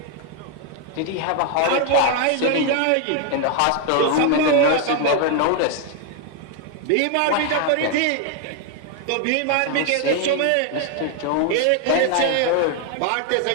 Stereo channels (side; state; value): both; different; correlation 0.01